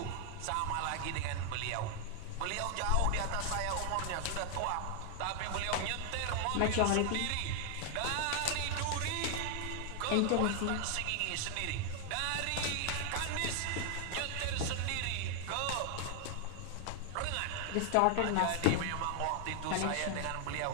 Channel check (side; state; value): both; different; correlation 0.00